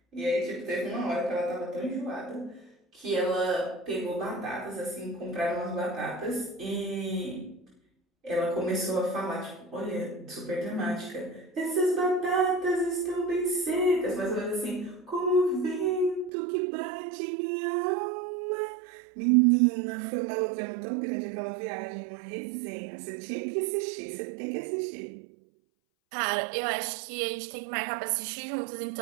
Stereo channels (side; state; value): left; drops out; at 16.3 s